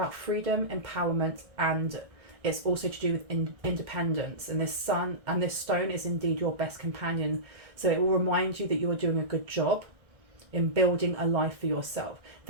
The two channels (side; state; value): left; late; 1.6 ms